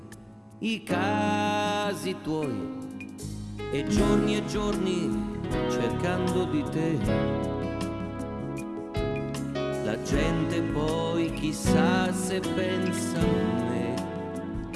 i casi tuoi e giorni cercando di te. La gente poi chissà se pensa a me,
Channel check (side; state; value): both; identical; correlation 1.00